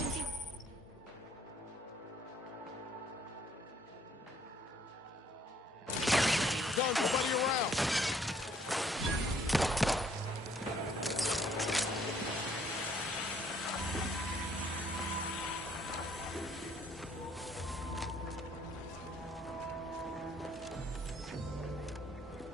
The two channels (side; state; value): both; normal; correlation 0.64